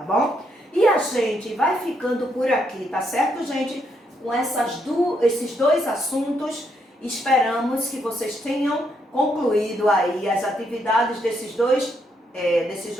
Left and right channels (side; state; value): both; normal; correlation 0.76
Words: bom? E a gente vai ficando por aqui, tá certo, gente? Com esses dois assuntos, esperamos que vocês tenham concluído aí as atividades desses dois